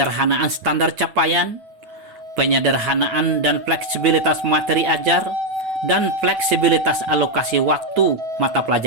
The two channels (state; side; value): late; left; 9.0 ms